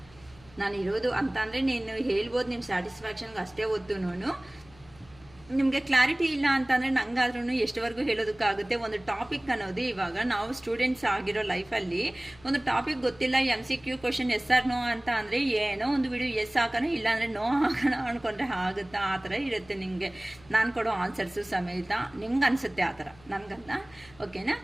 ನಾನು ಇರೋದು ಅಂತ ಅಂದರೆ ನೀನು ಹೇಳ್ಬೋದು ನಿಮ್ಮ ಸ್ಯಾಟಿಸ್ಫ್ಯಾಕ್ಷನ್ಗೆ ಅಷ್ಟೇ ಹೊತ್ತು ನಿಮಗೆ ಕ್ಲಾರಿಟಿ ಇಲ್ಲ ಅಂತಂದರೆ ನಂಗಾದ್ರೂ ಎಷ್ಟುವರೆಗೂ ಹೇಳೋದಕ್ಕಾಗುತ್ತೆ. ಒಂದು ಟಾಪಿಕ್ ಅನ್ನೋದು ಇವಾಗ ನಾವು ಸ್ಟೂಡೆಂಟ್ಸ್ ಆಗಿರೋ ಲೈಫಲ್ಲಿ ಒಂದು ಟಾಪಿಕ್ ಗೊತ್ತಿಲ್ಲ, MCQ question yes or no ಅಂತ ಅಂದರೆ ಏನೋ ಒಂದು ವಿಡಿಯೋ ಎಸ್ ಹಾಕೋಣ ಇಲ್ಲಾಂದರೆ ನೋ ಹಾಕೋಣ ಅಂದ್ಕೊಂಡ್ರೆ ಆಗುತ್ತಾ, ಆ ಥರ ಇರುತ್ತೆ ನಿಮಗೆ ನಾನು ಕೊಡೋ ಆನ್ಸರ್ಸು ಸಮೇತ. ನಿಮ್ಗೆ ಅನಿಸುತ್ತೆ ಆ ಥರ, ನನಗಲ್ಲ. ಓಕೆನಾ?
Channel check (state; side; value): noise; left; hum, 25 dB below the sound